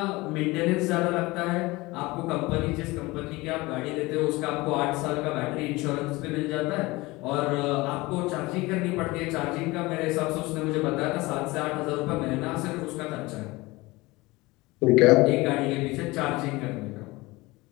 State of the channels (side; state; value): right; quieter; 21.8 dB